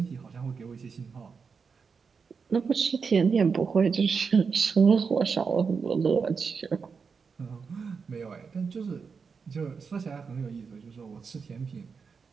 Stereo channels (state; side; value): quieter; left; 5.5 dB